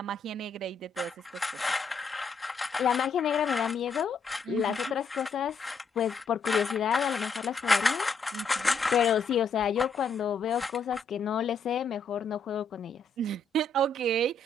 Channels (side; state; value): right; quieter; 3.9 dB